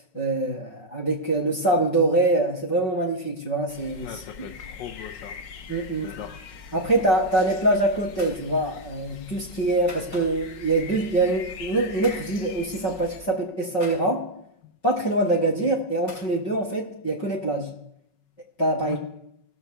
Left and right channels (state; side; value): late; right; 5.4 ms